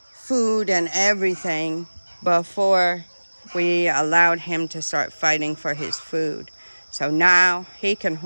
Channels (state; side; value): inverted; both; correlation -1.00